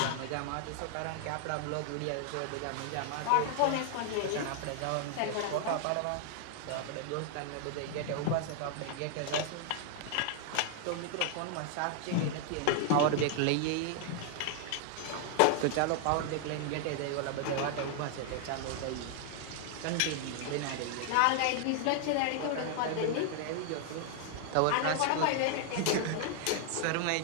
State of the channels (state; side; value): different; both; correlation 0.00